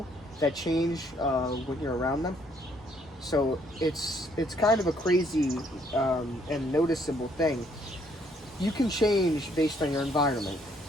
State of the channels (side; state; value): both; normal; correlation 0.67